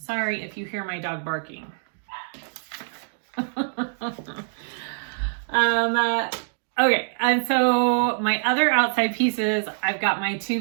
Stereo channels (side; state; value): left; silent; digital silence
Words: if you hear my dog barking. Okay, and so my other outside pieces, I've got my 2